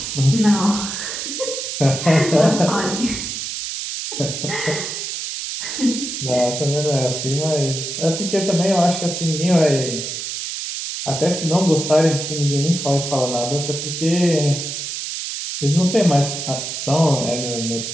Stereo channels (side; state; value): right; noise; hiss, 5 dB below the sound